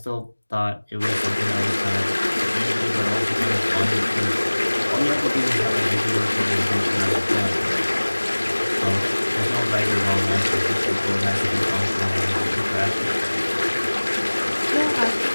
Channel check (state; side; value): inverted; both; correlation -1.00